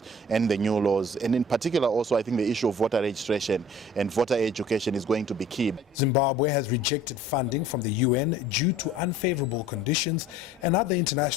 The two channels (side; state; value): both; normal; correlation 0.49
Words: and the new laws. And in particular, also, I think the issue of voter registration and voter education is going to be key. Zimbabwe has rejected funding from the UN due to unfavorable conditions, and other